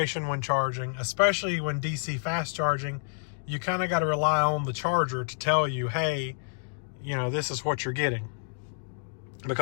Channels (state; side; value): silent; right; digital silence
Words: when charging, especially when DC fast charging. You kind of got to rely on the charger to tell you, hey, this is what you're getting,